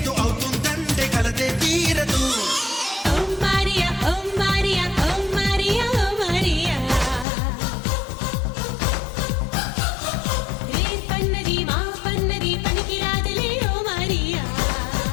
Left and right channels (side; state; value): right; drops out; at 7.2 s